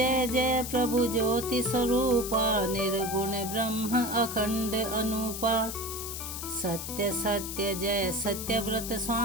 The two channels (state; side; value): noise; left; hiss, 7 dB below the sound